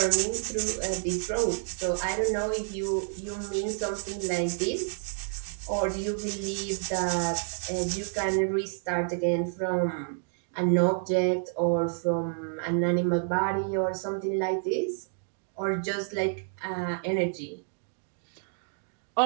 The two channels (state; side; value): silent; left; digital silence